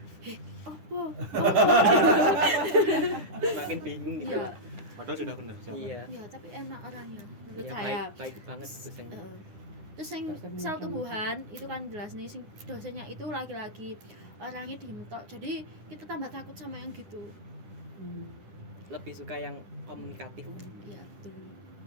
Apa? Makin bingung gitu. Iya. Padahal sudah benar jawaban. Iya. Ya, tapi enak orangnya menurut Ya, saya. baik banget dosennya. Terus yang sel tumbuhan itu kan jelas nih sing dosennya itu laki-laki, orangnya diem tok. Jadi kita tambah takut sama yang gitu. Lebih suka yang komunikatif. Iya, betul.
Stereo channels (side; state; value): left; late; 10 ms